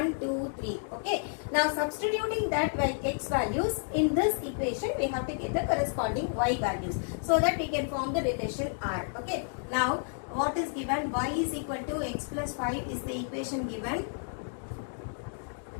2 3. Okay, now substituting that x values in this equation we have to get the corresponding y values so that we can form the relation R. Okay, now what is given? Y is equal to x plus 5 is the equation given,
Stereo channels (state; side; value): silent; right; digital silence